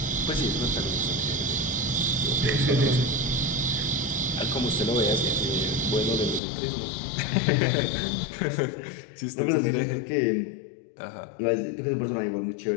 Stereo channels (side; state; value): right; drops out; at 6.4 s